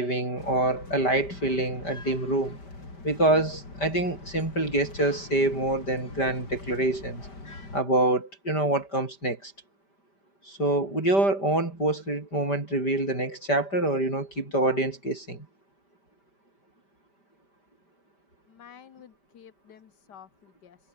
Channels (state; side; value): late; right; 5.1 ms